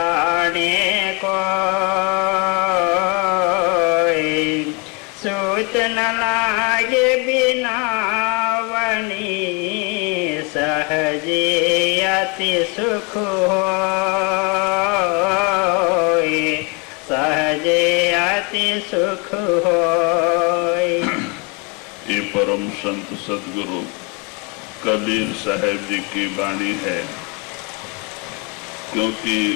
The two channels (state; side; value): quieter; right; 29.2 dB